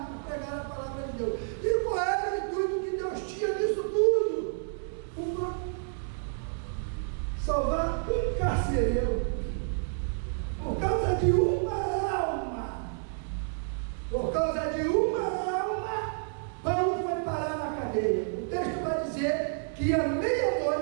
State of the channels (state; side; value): silent; left; digital silence